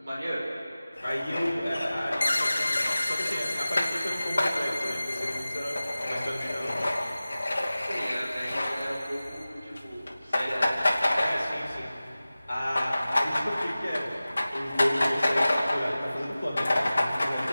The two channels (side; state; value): both; inverted; correlation -0.97